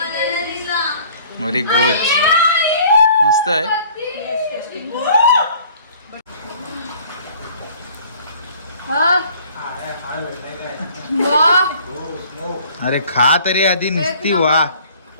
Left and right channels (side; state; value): both; inverted; correlation -0.53